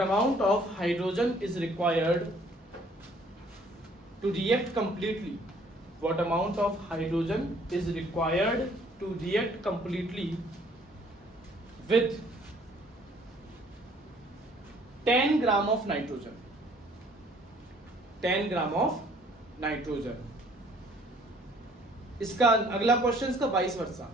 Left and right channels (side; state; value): both; normal; correlation 0.59